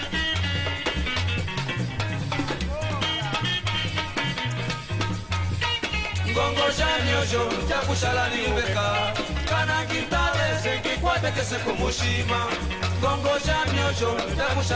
Bongo jamyosho jakushala niyubeka kana ngitale sengikwate kese kumushima. Bongo jamyosho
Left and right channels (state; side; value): identical; both; correlation 1.00